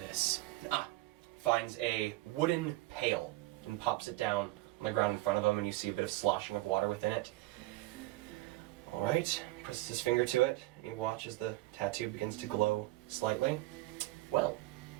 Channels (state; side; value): quieter; left; 19.5 dB